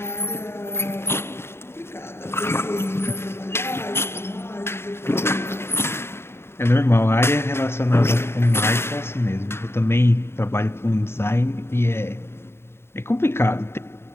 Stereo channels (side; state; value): right; late; 0.12 ms